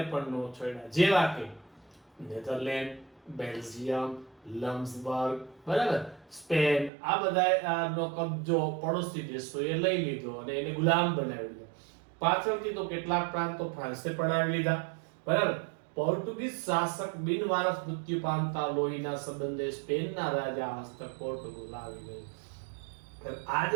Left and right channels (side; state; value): left; drops out; at 6.9 s